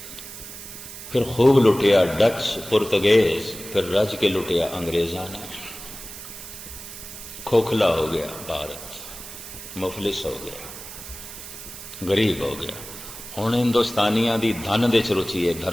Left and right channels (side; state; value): right; noise; hiss, 12 dB below the sound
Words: फिर खूब लुटिया डच, पुर्तगेज, फिर रज के लुटिया अंग्रेजा ने। खोखला हो गया भारत, मुफलिस हो गया, गरीब हो गया। हुण हिंदुस्तानियों की धन दे च रुचि है,